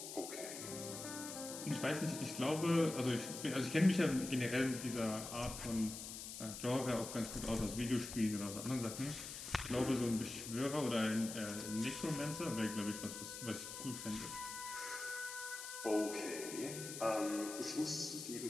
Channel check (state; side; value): noise; left; hiss, 8 dB below the sound